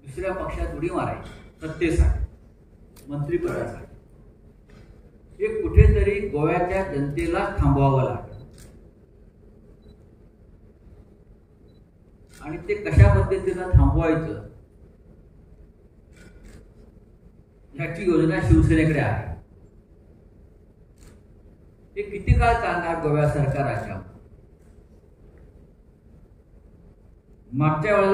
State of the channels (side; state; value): both; identical; correlation 1.00